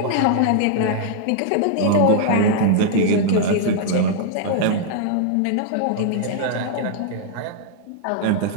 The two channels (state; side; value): different; both; correlation -0.01